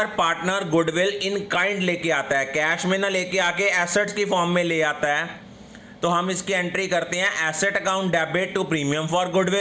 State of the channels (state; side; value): identical; both; correlation 1.00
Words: पार्टनर गुडविल इन काइंड लेके आता है, कैश में ना लेके आके एसेट्स की फॉर्म में ले आता है, तो हम इसकी एंट्री करते हैं asset account debit to premium for